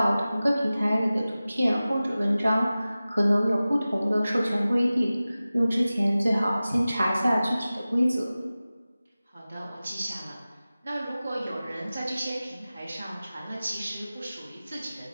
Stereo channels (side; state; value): both; inverted; correlation -0.96